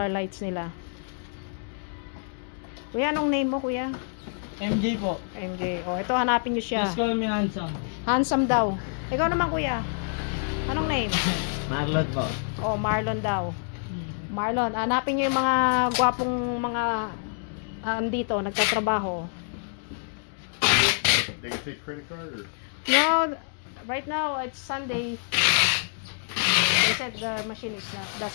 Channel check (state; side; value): silent; right; digital silence